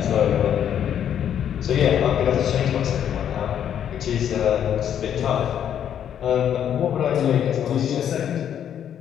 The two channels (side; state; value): right; quieter; 9.5 dB